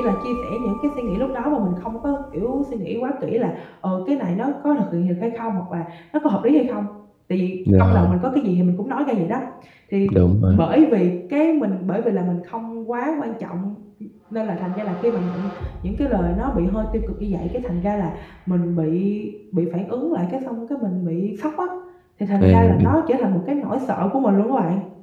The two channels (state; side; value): identical; both; correlation 1.00